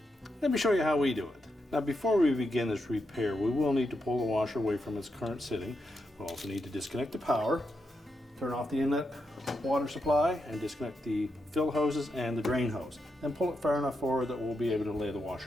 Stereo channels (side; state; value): both; normal; correlation 0.84